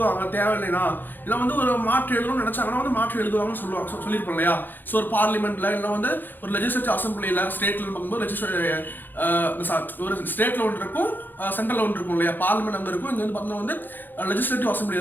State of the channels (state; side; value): late; right; 0.090 ms